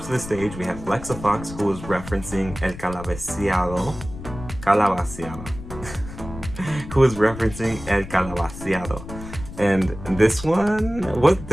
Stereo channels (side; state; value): left; noise; rumble, 12 dB below the sound